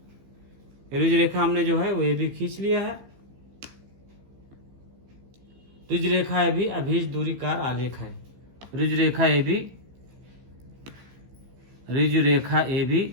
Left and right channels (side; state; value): left; late; 15 ms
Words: रुज रेखा हमने जो है वो ए बी खींच लिया है। रुज रेखा ए बी अभीष्ट दूरी कार आलेख है। रुज रेखा A B, रुज Rekha A